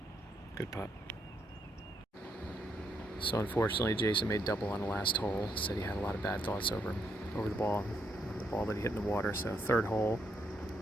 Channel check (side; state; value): both; normal; correlation 0.77